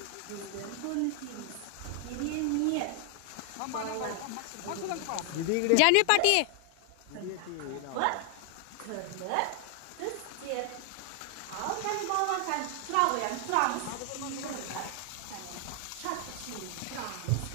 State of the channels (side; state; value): both; different; correlation 0.00